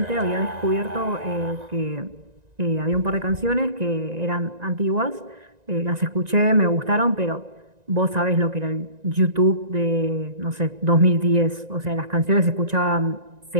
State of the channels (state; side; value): late; left; 1.9 ms